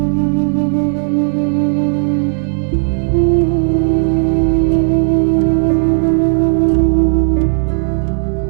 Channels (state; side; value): silent; left; digital silence